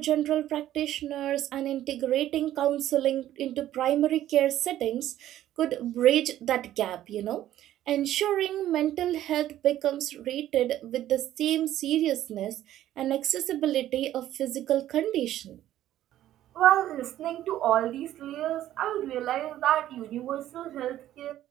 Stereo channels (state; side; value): quieter; left; 12.9 dB